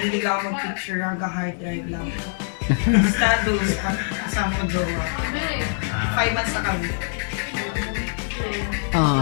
ako mag-picture, hanggang hard drive lang. Status, kasama ko jowa. 5 months na kami.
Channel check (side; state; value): right; silent; 58 dB below the other